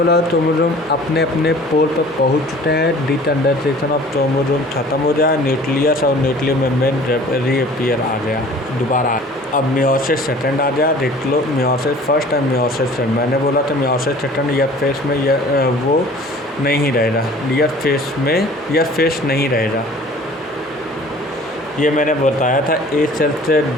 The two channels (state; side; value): normal; both; correlation 0.48